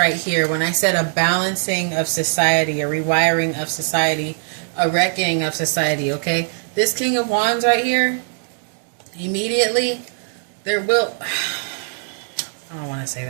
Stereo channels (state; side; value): silent; left; digital silence